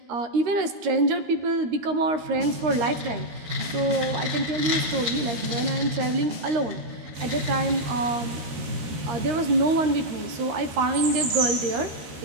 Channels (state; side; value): late; left; 13 ms